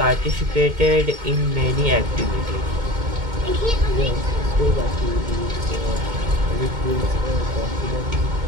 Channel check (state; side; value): late; left; 2.2 ms